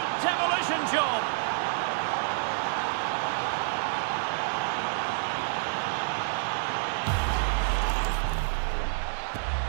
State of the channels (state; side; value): silent; left; digital silence